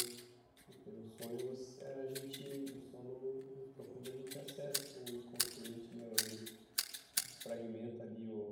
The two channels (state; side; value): identical; both; correlation 1.00